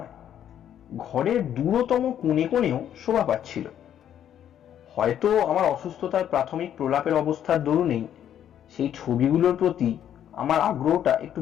ঘরের দূরতম কোণে কোণেও শোভা পাচ্ছিল। হয়তো আমার অসুস্থতার প্রাথমিক প্রলাপের অবস্থার দরুনেই সেই ছবিগুলোর প্রতি আমার আগ্রহটা একটু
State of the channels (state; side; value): quieter; right; 10.2 dB